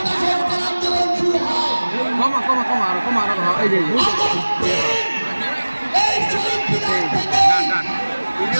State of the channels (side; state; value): both; inverted; correlation -1.00